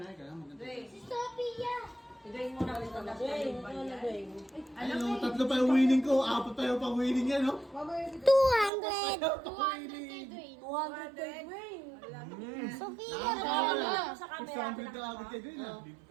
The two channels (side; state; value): left; drops out; at 8.7 s